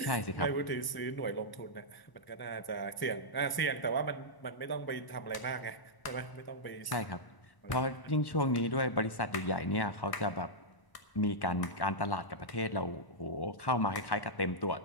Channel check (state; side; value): late; right; 1.0 ms